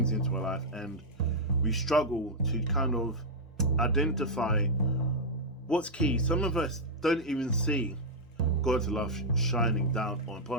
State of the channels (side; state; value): both; normal; correlation -0.04